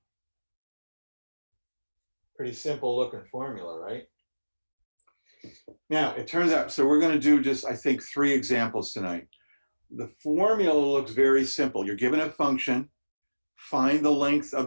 Pretty simple looking formula, right? Now, it turns out, so we're going to do just, I think, 3 examples tonight. The formula looks very simple. You're given a function, find the length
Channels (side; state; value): both; inverted; correlation -1.00